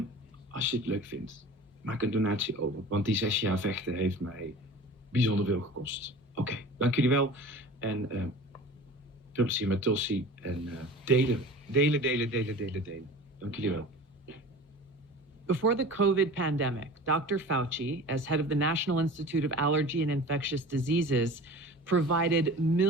als je het leuk vindt, maak een donatie over, want die 6 jaar vechten heeft mij bijzonder veel gekost. Oké, dank jullie wel en veel plezier met Tulsi en delen. Dank jullie wel. Before the COVID pandemic, Dr. Fauci, as head of the National Institute of Allergy and Infectious Diseases, provided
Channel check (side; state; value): both; normal; correlation 0.39